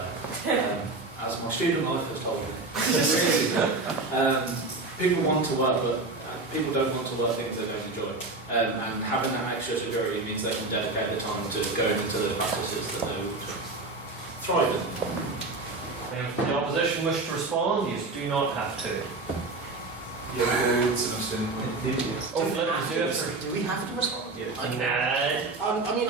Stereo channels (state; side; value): quieter; left; 3.4 dB